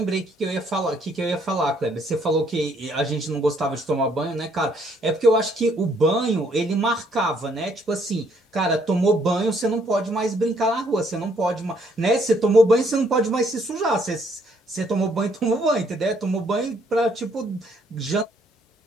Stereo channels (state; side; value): normal; both; correlation 0.67